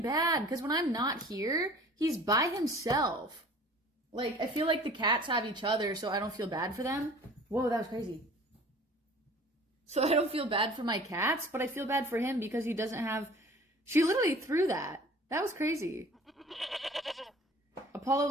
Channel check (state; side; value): normal; both; correlation 0.47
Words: because when I'm not here, he's by himself. Like, I feel like the cats have each other, so I don't feel bad for them. Whoa, that was crazy. So I don't feel bad for my cats, but I feel bad for him because he doesn't have... She literally threw that. That was crazy.